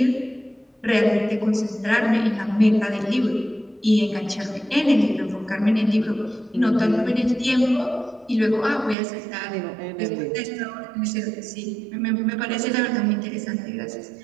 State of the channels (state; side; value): drops out; left; at 9.0 s